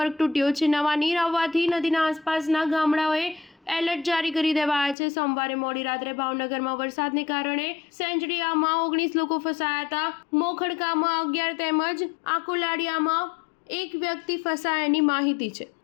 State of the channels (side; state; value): right; drops out; at 5.0 s